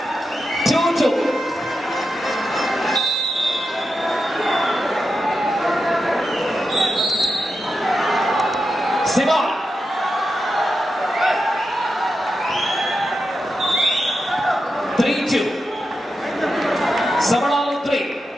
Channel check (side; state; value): both; normal; correlation 0.88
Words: 2-2. ಸಿಮಾನ್ 3-2. ಸವಣಾಲು 3,